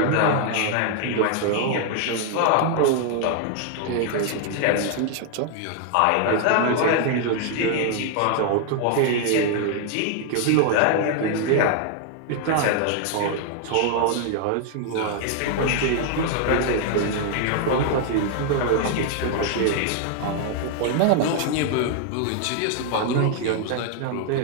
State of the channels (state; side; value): different; both; correlation 0.00